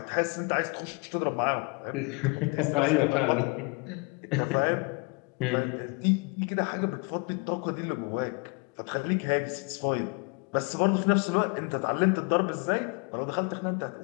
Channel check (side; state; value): right; quieter; 30.9 dB